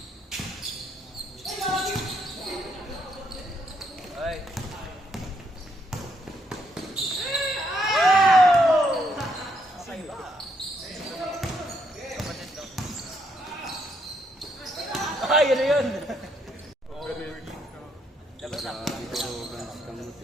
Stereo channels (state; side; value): normal; both; correlation 0.74